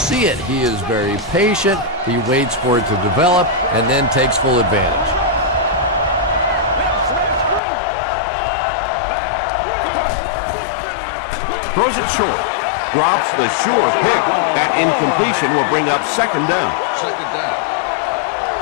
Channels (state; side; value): drops out; right; at 7.6 s